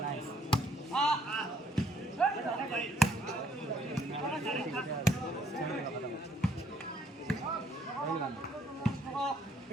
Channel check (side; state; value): both; normal; correlation 0.65